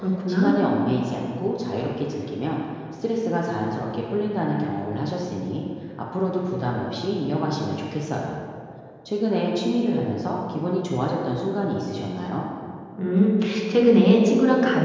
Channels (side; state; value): both; identical; correlation 1.00